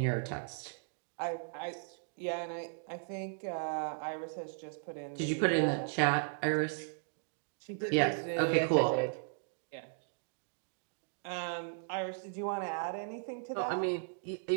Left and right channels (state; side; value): silent; left; digital silence